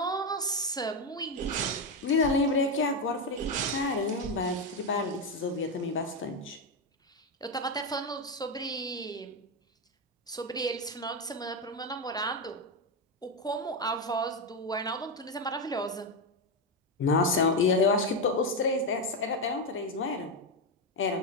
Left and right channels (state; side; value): normal; both; correlation 0.09